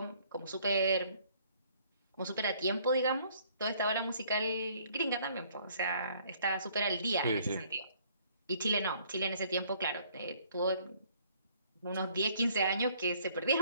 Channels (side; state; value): both; inverted; correlation -0.61